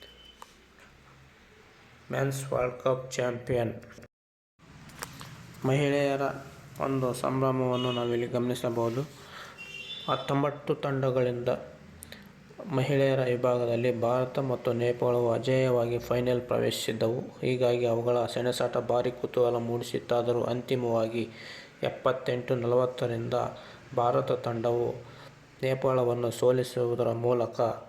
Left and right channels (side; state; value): both; identical; correlation 1.00